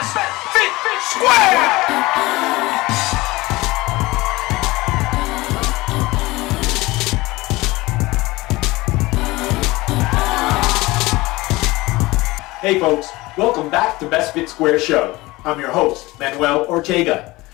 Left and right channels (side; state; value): right; quieter; 20.7 dB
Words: Fit Square! Hey folks, welcome back to Best Fit Square Show. I'm your host, Manuel Ortega.